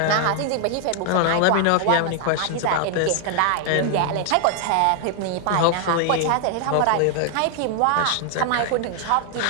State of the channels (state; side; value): different; both; correlation 0.00